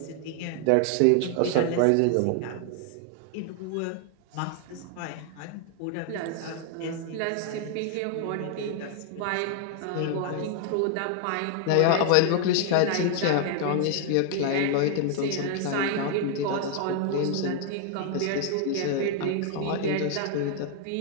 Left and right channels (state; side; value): different; both; correlation 0.00